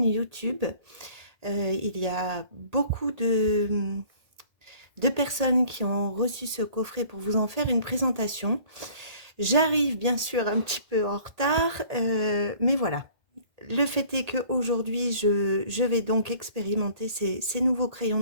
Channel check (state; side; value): late; left; 1.8 ms